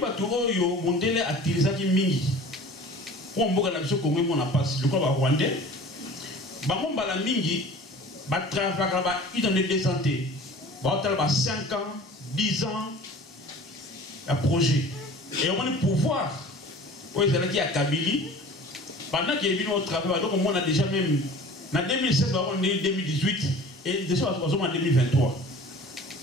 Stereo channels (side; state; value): both; normal; correlation 0.43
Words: oyo mondele atilisaki mingi pour mboka na biso Congo mona passe le quoi ba rwandais bango mbala mingi ba travailler ba identité de santé ba hôtel ba 5 ans 10 ans un projet et on a pouvoir oui c'est là qui a Kabili pendant qu'il est venu au travail donc on a déjà même en 2016 on est 2018 et déjà on est en 2023